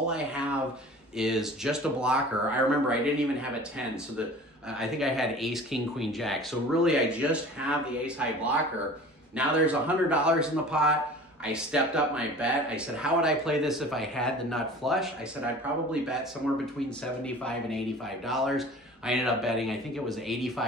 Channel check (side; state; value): both; normal; correlation 0.42